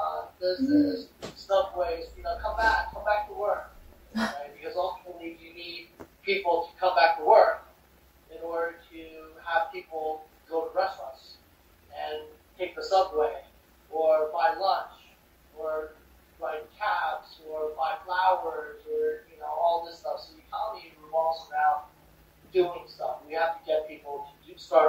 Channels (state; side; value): identical; both; correlation 1.00